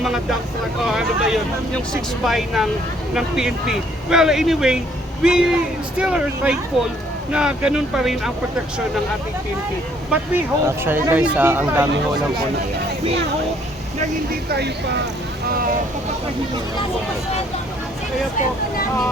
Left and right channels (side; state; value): both; normal; correlation 0.64